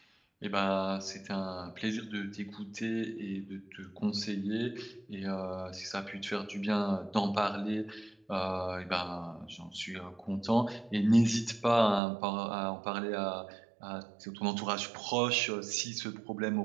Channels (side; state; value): left; drops out; at 12.0 s